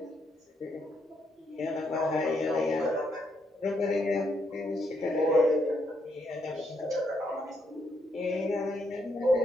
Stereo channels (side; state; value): both; normal; correlation 0.76